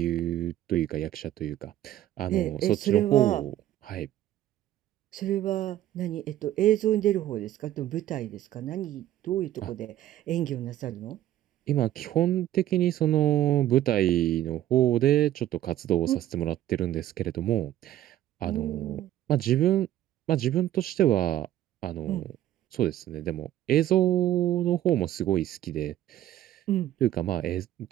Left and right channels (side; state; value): left; quieter; 13.0 dB